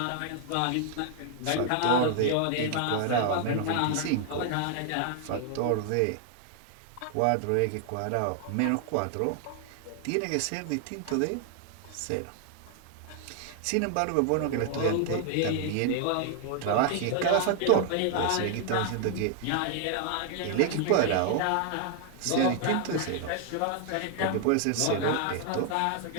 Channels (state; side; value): different; both; correlation 0.00